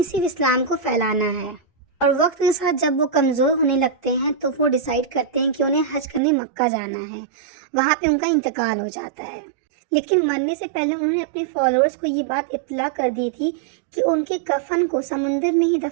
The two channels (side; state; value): left; drops out; at 6.2 s